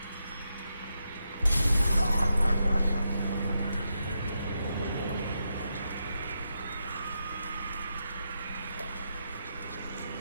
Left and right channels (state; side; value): inverted; both; correlation -0.84